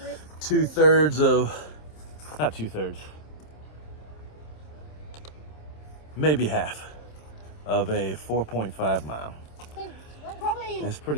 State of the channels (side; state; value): right; late; 27 ms